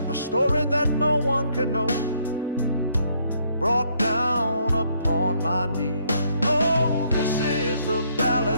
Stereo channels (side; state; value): both; inverted; correlation -0.70